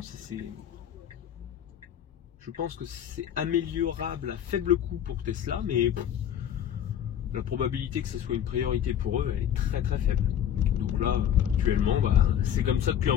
je pense que c'est améliorable à faible coût pour Tesla, mais la probabilité que ce soit une priorité pour eux, elle est très très faible. Donc là, actuellement, c'est comme ça depuis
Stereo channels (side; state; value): right; quieter; 9.7 dB